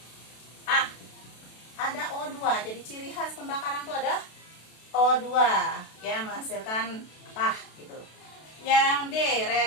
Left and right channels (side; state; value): right; late; 32 ms